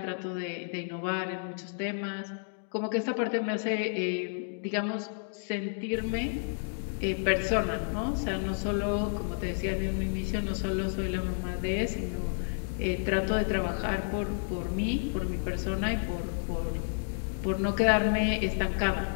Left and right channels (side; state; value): right; silent; digital silence